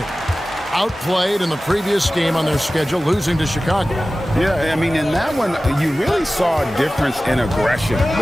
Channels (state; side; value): normal; both; correlation 0.96